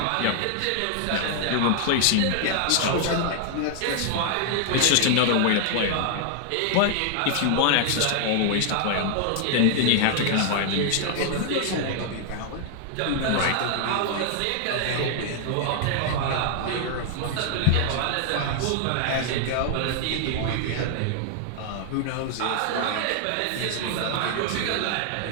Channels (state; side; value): different; both; correlation 0.00